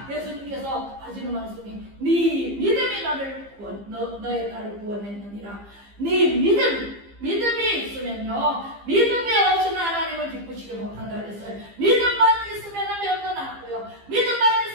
예수님께서 하시는 말씀이 네 믿음이 나를 너의 딸을 구원했느니라. 네 믿음이 있으면요 믿음이 없이는 하나님을 기쁘시게 못한다 그랬어요. 믿음만 있으면 병도 낫고요, 믿음만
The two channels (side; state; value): left; late; 15 ms